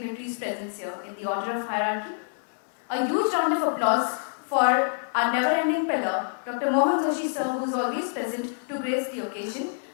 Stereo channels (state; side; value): silent; right; 60 dB below the other